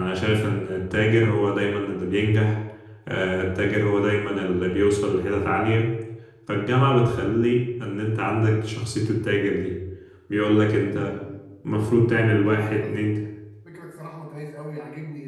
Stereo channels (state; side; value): identical; both; correlation 1.00